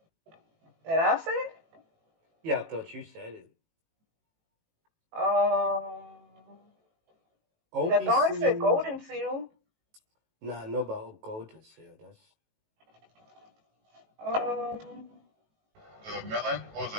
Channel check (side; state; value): left; late; 18 ms